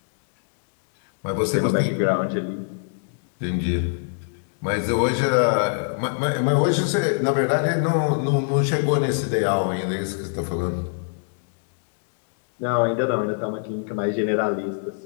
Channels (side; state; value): right; silent; digital silence